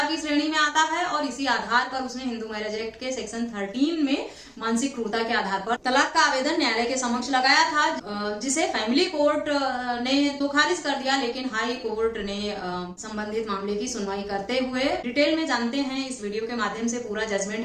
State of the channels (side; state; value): both; identical; correlation 1.00